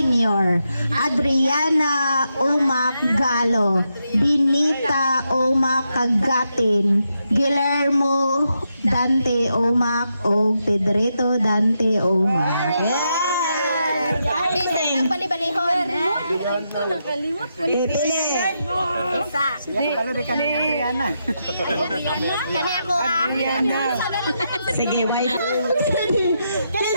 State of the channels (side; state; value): both; inverted; correlation -0.83